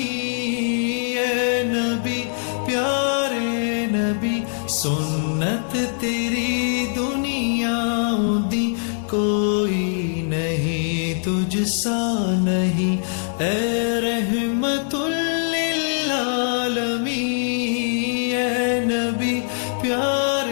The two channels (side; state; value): right; silent; 60 dB below the other